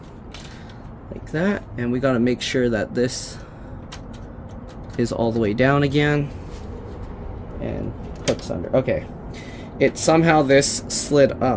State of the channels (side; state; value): both; identical; correlation 1.00